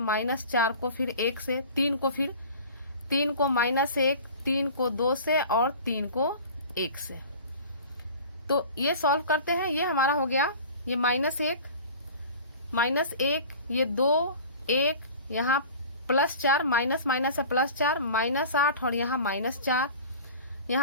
को फिर 1 से, 3 को फिर 3 को -1, 3 को 2 से और 3 को 1 से। तो ये सॉल्व करते हैं, ये हमारा हो गया, ये -1 ये 2 1, यहाँ +4 माइनस माइनस है +4 -8 और यहाँ -4,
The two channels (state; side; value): inverted; both; correlation -0.40